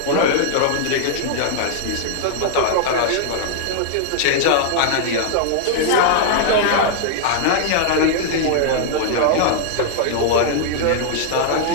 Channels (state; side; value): different; both; correlation -0.01